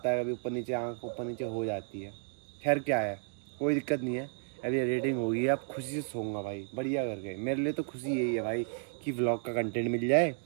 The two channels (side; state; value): left; silent; digital silence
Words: है, कभी ऊपर नीचे आँख ऊपर नीचे हो जाती है। खैर क्या है, कोई दिक्कत नहीं है। अभी एडिटिंग होगी, अब खुशी से सोऊंगा भाई बढ़िया करके। मेरे लिए तो खुशी यही है भाई कि व्लॉग का कंटेंट मिल जाए